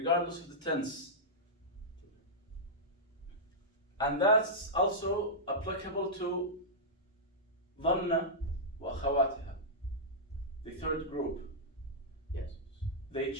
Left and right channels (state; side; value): normal; both; correlation -0.11